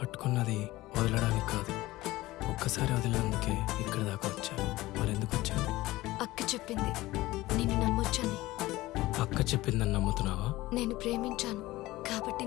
వదలడానికి కాదు, ఒక్కసారి వదిలినందుకే ఇక్కడ దాకా వచ్చాను. మరి ఎందుకు వచ్చాను? అక్క చెప్పింది నేను నమ్మొచ్చని. అక్క చెప్పిందని నమ్ముతున్నావా? నేను ప్రేమించాను కాబట్టి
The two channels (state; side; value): quieter; right; 18.2 dB